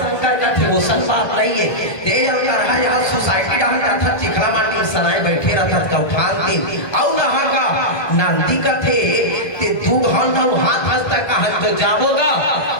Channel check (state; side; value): late; right; 1.3 ms